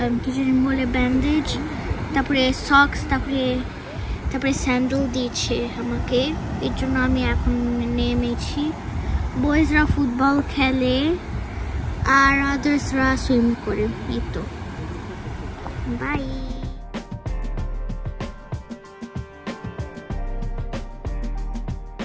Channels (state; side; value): identical; both; correlation 1.00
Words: কিছু বলে ব্যান্ডেজ, তারপরে সক্স, তারপরে স্যান্ডেল দিয়েছে আমাকে। এর জন্য আমি এখন নেমেছি। বয়েজরা ফুটবল খেলে আর আদার্সরা সুইম করে। এই তো, বাই।